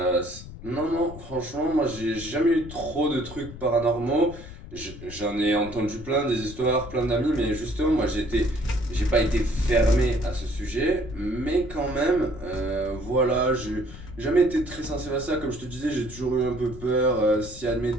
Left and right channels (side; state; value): left; noise; rumble, 14 dB below the sound